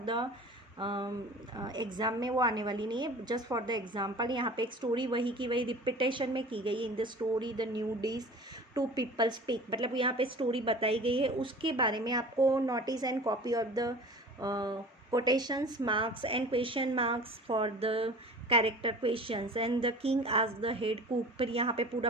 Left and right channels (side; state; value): both; normal; correlation 0.40